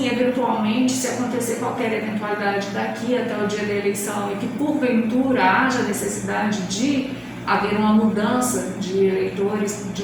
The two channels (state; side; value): identical; both; correlation 1.00